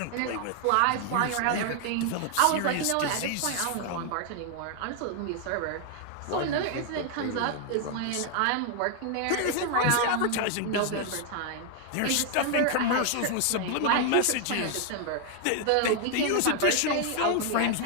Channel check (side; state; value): both; different; correlation 0.00